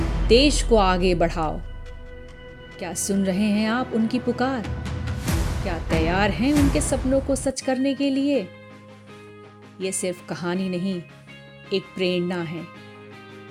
देश को आगे बढ़ाओ। क्या सुन रहे हैं आप उनकी पुकार? क्या तैयार हैं उनके सपनों को सच करने के लिए? ये सिर्फ कहानी नहीं, एक प्रेरणा है।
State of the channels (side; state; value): both; identical; correlation 1.00